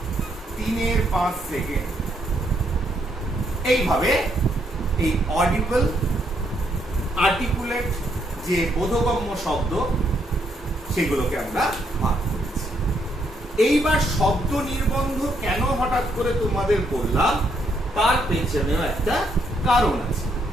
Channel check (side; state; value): both; normal; correlation 0.74